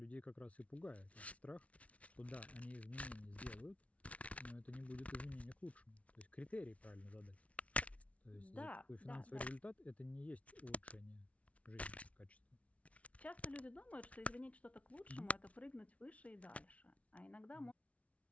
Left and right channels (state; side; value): late; right; 0.065 ms